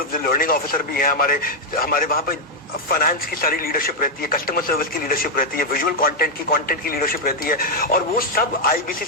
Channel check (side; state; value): both; normal; correlation -0.01